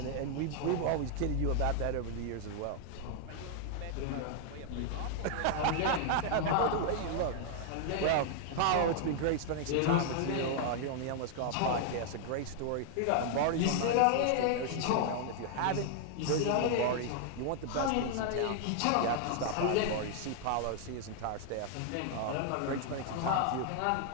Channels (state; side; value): different; both; correlation 0.00